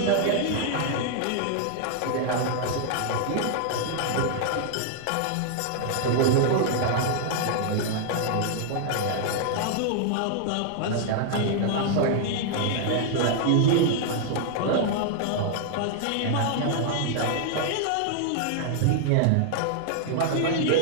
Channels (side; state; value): both; different; correlation 0.00